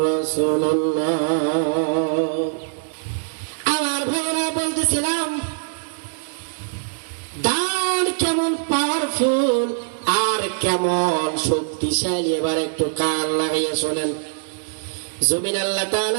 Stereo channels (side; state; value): left; silent; digital silence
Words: রাসূলুল্লাহ। আমার ভাইরা বলতেছিলাম দান কেমন পাওয়ারফুল আর কেমন শক্তিশালী। এবার একটু কান লাগাইয়া শোনেন। জমিন আল্লাহ